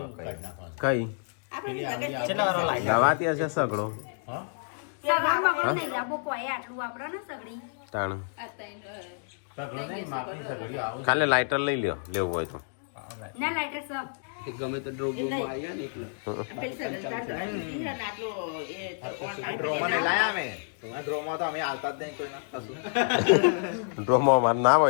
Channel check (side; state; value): right; silent; digital silence